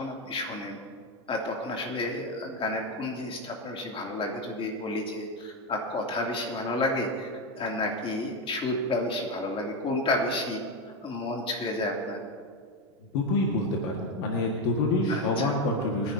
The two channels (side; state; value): both; normal; correlation 0.10